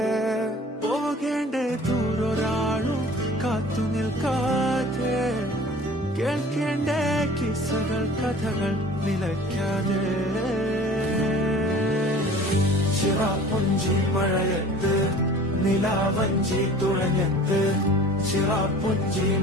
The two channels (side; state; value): both; normal; correlation 0.45